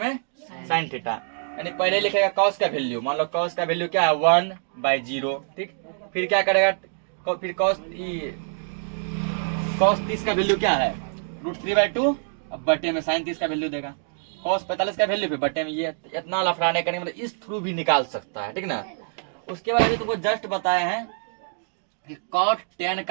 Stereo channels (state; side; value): silent; left; digital silence